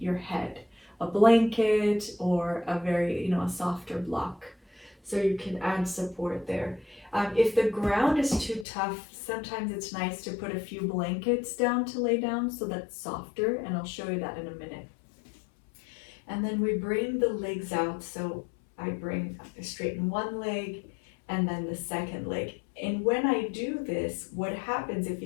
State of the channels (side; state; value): right; drops out; at 8.7 s